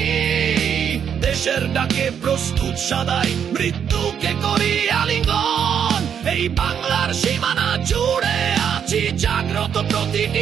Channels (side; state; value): left; quieter; 8.1 dB